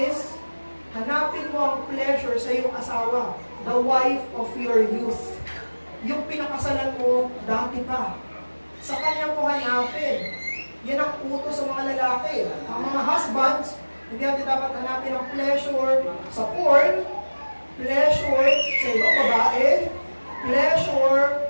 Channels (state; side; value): inverted; both; correlation -1.00